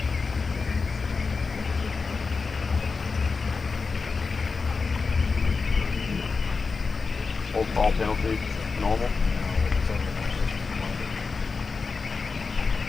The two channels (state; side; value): quieter; right; 4.5 dB